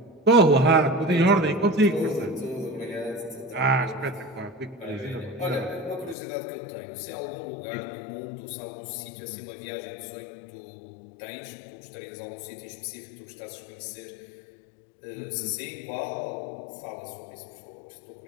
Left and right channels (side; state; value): right; drops out; at 6.2 s